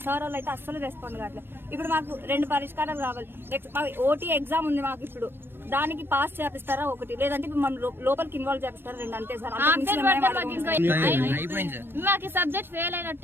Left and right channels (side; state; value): left; late; 0.10 ms